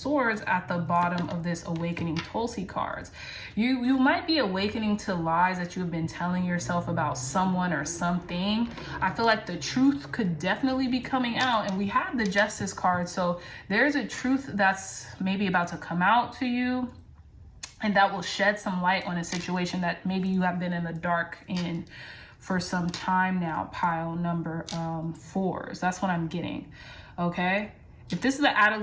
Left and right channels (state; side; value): identical; both; correlation 1.00